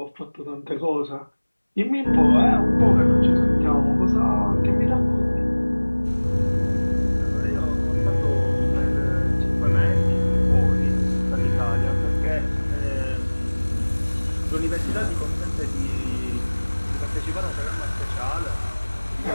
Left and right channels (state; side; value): inverted; both; correlation -1.00